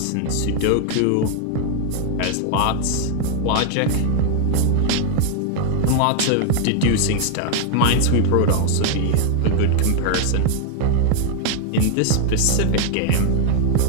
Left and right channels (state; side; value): different; both; correlation 0.00